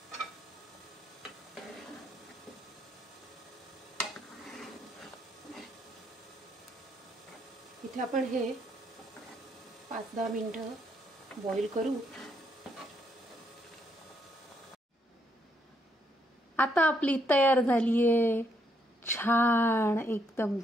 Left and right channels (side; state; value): both; normal; correlation 0.74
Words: इथे आपण हे 5-10 मिनिटं बॉईल करू. आता आपली तयार झालीये छान एकदम